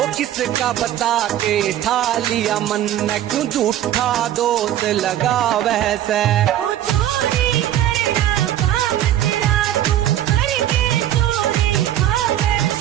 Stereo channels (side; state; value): left; quieter; 12.2 dB